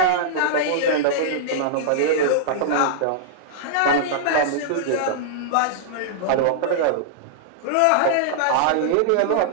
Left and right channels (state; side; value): different; both; correlation -0.02